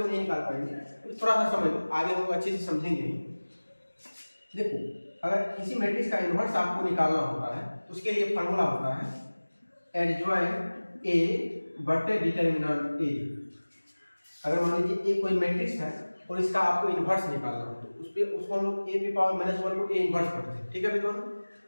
नहीं निकाल पाएंगे, तो थोड़ा सा समझ लो, आगे हम लोग अच्छे से समझेंगे। देखो, अगर किसी मैट्रिक्स का इन्वर्स आपको निकालना होता है, तो उसके लिए फॉर्मूला होता है एडजॉइंट ए बटे डिटर्मिनेंट ए। अगर मान लीजिए ए कोई मैट्रिक्स है और इसका आपको इन्वर्स निकालना हो, तो उसको हम लोग ए की पावर -1 को ए इन्वर्स पढ़ते हैं। ठीक है विद्वान,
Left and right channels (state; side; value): inverted; both; correlation -1.00